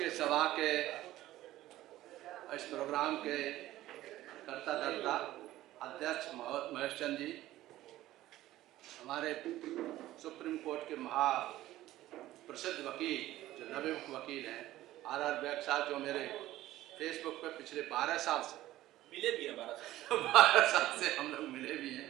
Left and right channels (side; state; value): left; quieter; 15.2 dB